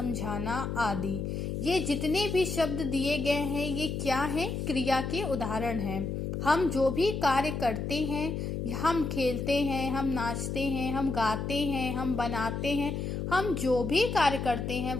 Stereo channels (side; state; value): left; noise; hum, 3 dB below the sound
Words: आदि। ये जितने भी शब्द दिए गए हैं ये क्या हैं, क्रिया के उदाहरण हैं। हम जो भी कार्य करते हैं, हम खेलते हैं, हम नाचते हैं, हम गाते हैं, हम बनाते हैं, हम जो भी कार्य करते हैं